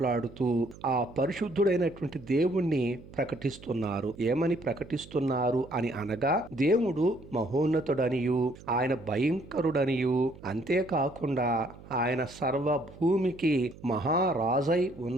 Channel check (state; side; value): noise; right; hum, 19 dB below the sound